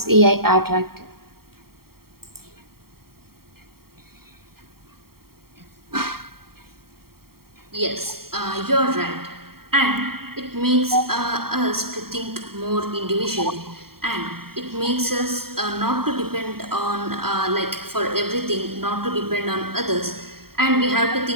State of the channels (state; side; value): late; left; 0.94 ms